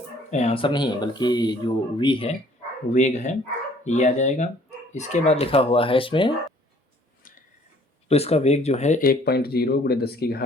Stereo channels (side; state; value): both; normal; correlation 0.57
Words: आंसर नहीं बल्कि जो v है, वेग है, ये आ जाएगा। इसके बाद लिखा हुआ है इसमें, तो इसका वेग जो है 1.0 ×